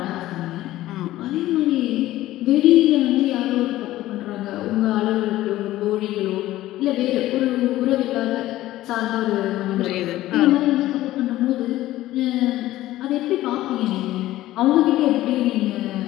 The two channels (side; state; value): right; quieter; 15.4 dB